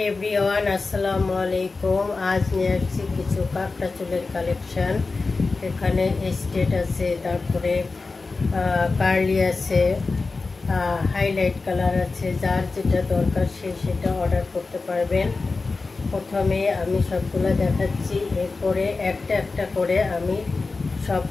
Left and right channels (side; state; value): right; quieter; 3.9 dB